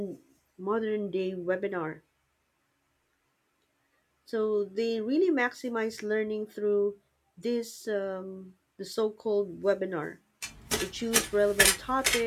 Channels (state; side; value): identical; both; correlation 1.00